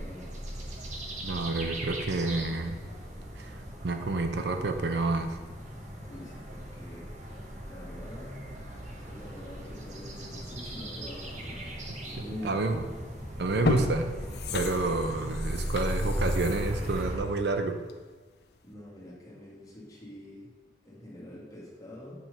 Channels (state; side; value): normal; both; correlation 0.54